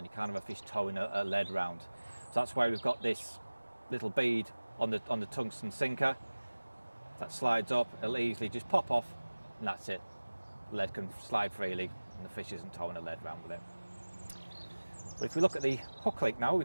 You can't have a fish towing a lead round. So that's why we've got this little bead on the tungsten sinker. If that slides up, it'll easily just pop off, and that's it. The lead can slide freely, and the fish isn't towing the lead around with it. But if we look at the hook link now, we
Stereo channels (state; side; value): inverted; both; correlation -1.00